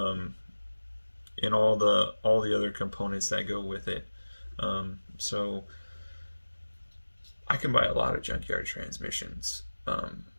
all the other components that go with it. So I can buy a lot of junkyard transmissions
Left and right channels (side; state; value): both; inverted; correlation -1.00